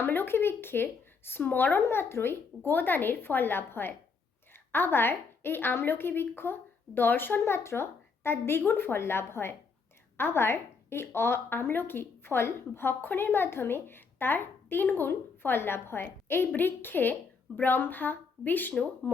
বৃক্ষের স্মরণ মাত্রই গোদানের ফল লাভ হয়। আবার এই আমলকি বৃক্ষ দর্শন মাত্র তার দ্বিগুণ ফল লাভ হয়। আবার এই আমলকি ফল ভক্ষণের মাধ্যমে তার 3 গুণ ফল লাভ হয়। এই বৃক্ষে ব্রহ্মা, বিষ্ণু,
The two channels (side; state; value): right; quieter; 5.1 dB